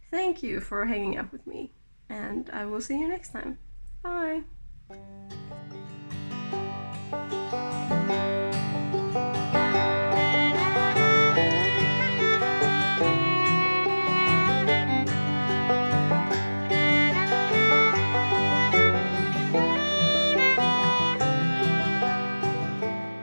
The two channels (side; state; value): both; inverted; correlation -1.00